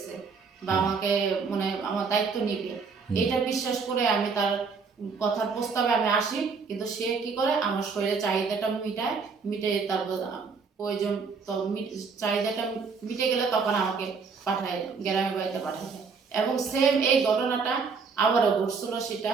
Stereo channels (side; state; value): left; quieter; 5.1 dB